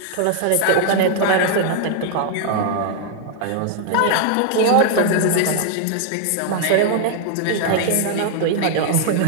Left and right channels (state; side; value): different; both; correlation 0.00